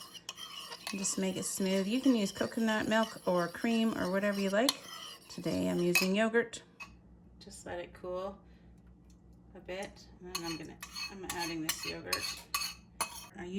And just make it smooth. You can use coconut milk or cream or whatever you like. Today I'm using yogurt. Just let it cool a bit, and then I'm adding this yogurt. I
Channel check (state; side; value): identical; both; correlation 1.00